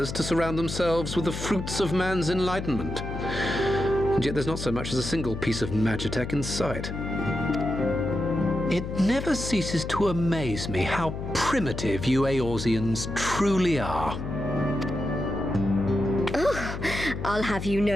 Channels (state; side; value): noise; left; hum, 6 dB below the sound